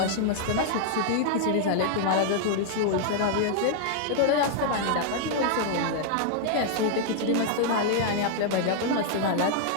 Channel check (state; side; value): different; both; correlation -0.01